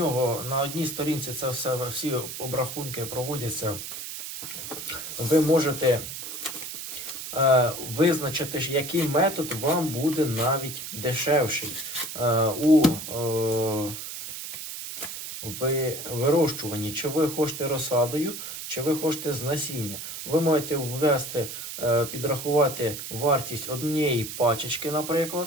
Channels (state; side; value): noise; right; hiss, 8 dB below the sound